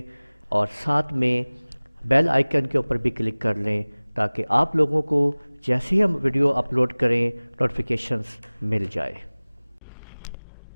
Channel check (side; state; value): both; inverted; correlation -1.00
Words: اور ساتھ میں بیل آئیکن کے اوپر بھی کلک کر لیں تاکہ آپ لوگوں کو جیسے ہی ہم ویڈیو اپلوڈ کریں نوٹیفیکیشنز مل جائے۔